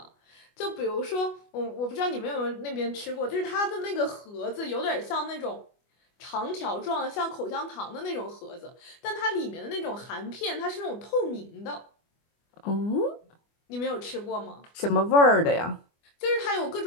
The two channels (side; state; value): right; late; 24 ms